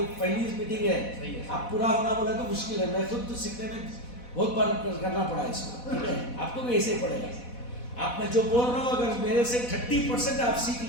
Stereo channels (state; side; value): late; right; 4.1 ms